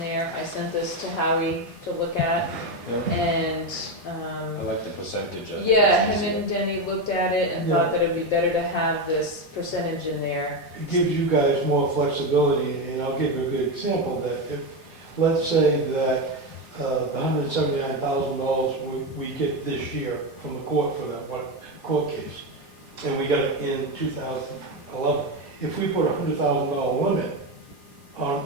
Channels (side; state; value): both; normal; correlation 0.12